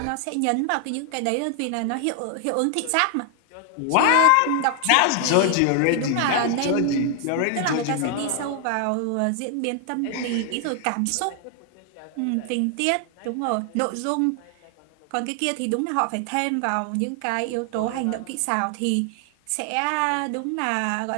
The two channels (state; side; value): different; both; correlation 0.00